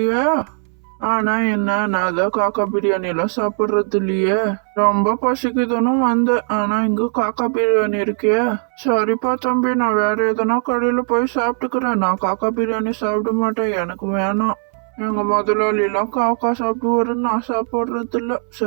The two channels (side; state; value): left; silent; 62 dB below the other